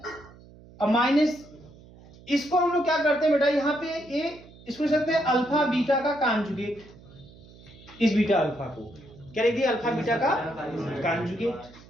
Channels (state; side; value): noise; right; hum, 22 dB below the sound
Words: और माइनस इसको हम लोग क्या करते हैं बेटा, यहाँ पे ये इसको सकते हैं अल्फा बीटा का कॉन्जुगेट, इस बीटा अल्फा को क्या लिख दिया, अल्फा बीटा का कॉन्जुगेट।